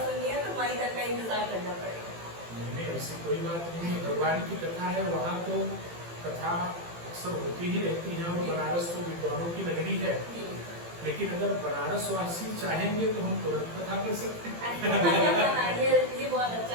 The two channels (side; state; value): left; late; 18 ms